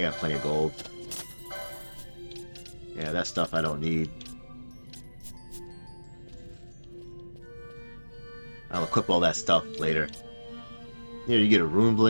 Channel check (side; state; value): both; inverted; correlation -1.00